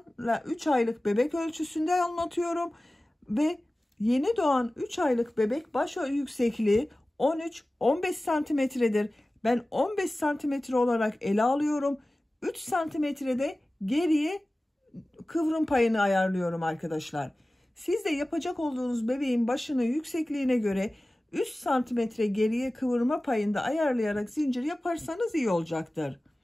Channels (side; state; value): both; normal; correlation 0.97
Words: 3 aylık bebek ölçüsünde anlatıyorum ve yeni doğan 3 aylık bebek baş yüksekliği 13-15 santimetredir. Ben 15 santimetre olarak ele alıyorum. 3 santimetrede geriye kıvrım payını ayarlıyorum arkadaşlar. Siz de yapacak olduğunuz bebeğin başını yüksekliğine göre 3 santimetre geriye kıvırma payında ayarlayarak zincir yaparsanız iyi olacaktır.